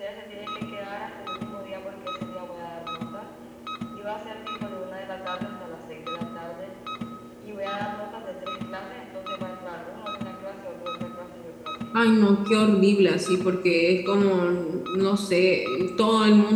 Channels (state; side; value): identical; both; correlation 1.00